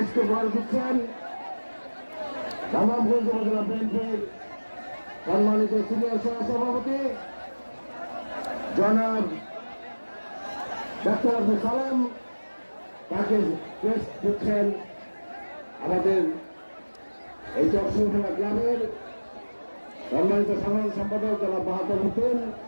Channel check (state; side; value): inverted; both; correlation -1.00